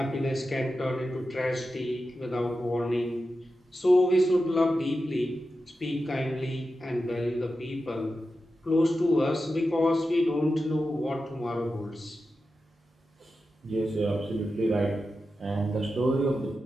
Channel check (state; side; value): normal; both; correlation 0.91